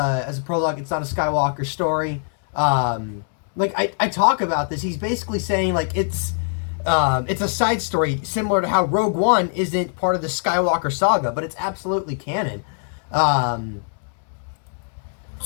a prologue, it's not a Skywalker story. I talk about this. He's basically saying, like, it's a side story, similar to how Rogue One isn't part of the Skywalker saga, but it's absolutely canon. And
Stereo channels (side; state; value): right; silent; 64 dB below the other